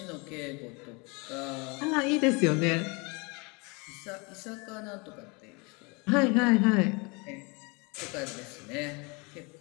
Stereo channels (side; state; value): right; quieter; 29.2 dB